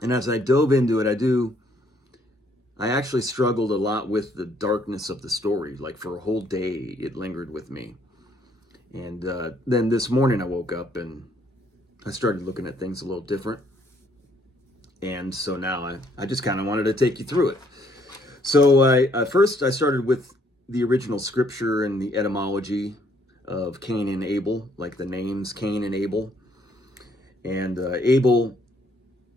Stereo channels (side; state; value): both; normal; correlation 0.67